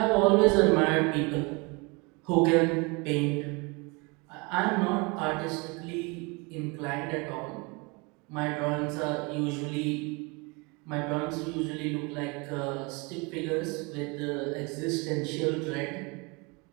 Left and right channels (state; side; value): quieter; left; 28.8 dB